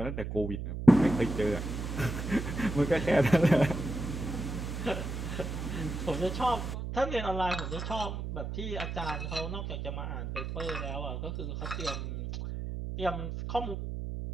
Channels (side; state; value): right; noise; hum, 5 dB below the sound